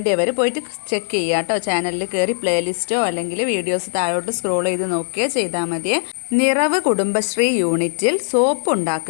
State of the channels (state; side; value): silent; right; digital silence